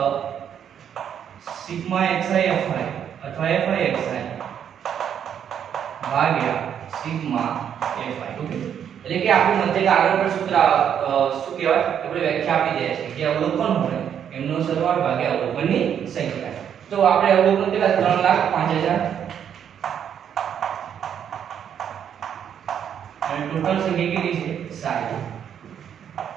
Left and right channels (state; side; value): quieter; left; 8.8 dB